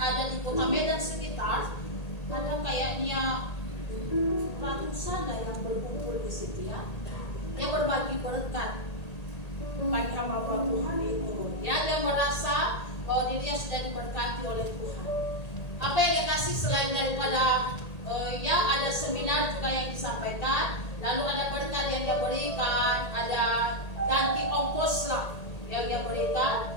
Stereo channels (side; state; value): right; late; 1.8 ms